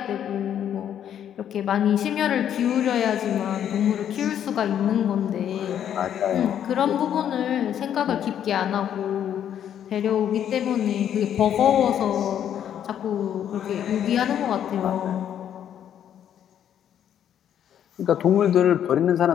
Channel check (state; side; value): quieter; right; 9.7 dB